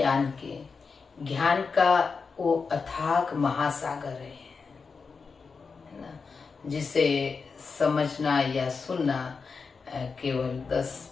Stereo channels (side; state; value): right; quieter; 5.0 dB